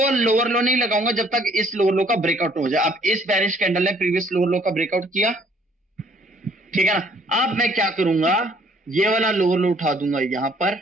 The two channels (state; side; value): normal; both; correlation 0.61